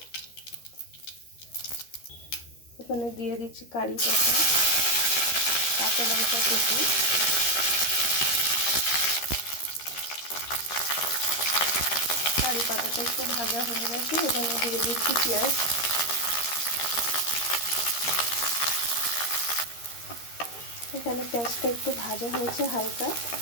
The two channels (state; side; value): late; right; 13 ms